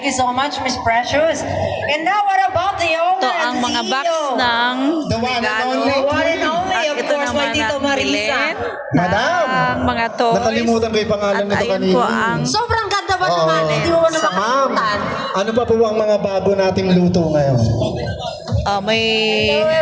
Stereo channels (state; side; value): identical; both; correlation 1.00